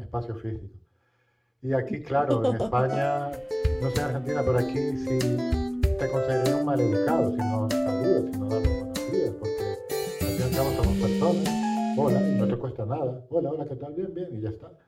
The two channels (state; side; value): identical; both; correlation 1.00